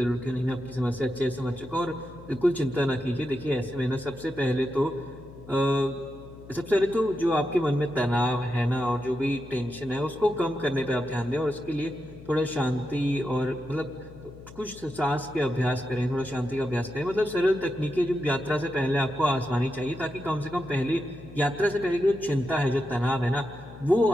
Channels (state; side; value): noise; left; hum, 18 dB below the sound